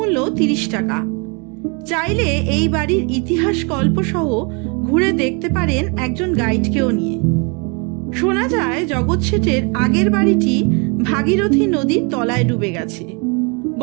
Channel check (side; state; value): left; quieter; 33.1 dB